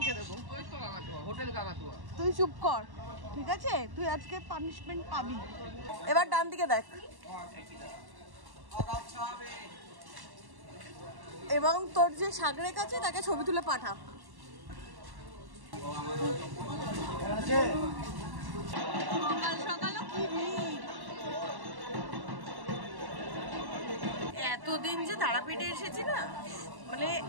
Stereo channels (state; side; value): late; left; 1.1 ms